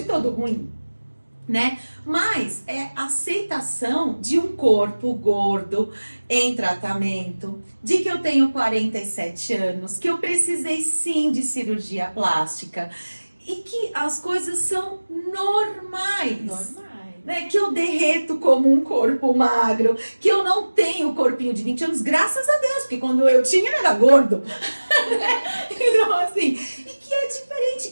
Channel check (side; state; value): both; inverted; correlation -1.00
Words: todo ruim, né? Mas é aceitação de um corpo gordo em tratamento, de que eu tenho 47 anos, que eu precisei sim de cirurgia plástica e que as coisas são normais. Né, que eu derreto como um corpo magro, que eu não tenho o corpinho de 20 anos, graças a Deus, porque quando eu tinha ele era gordo. Então, assim, e que é diferente,